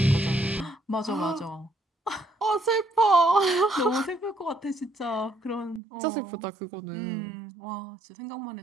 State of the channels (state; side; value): drops out; left; at 5.8 s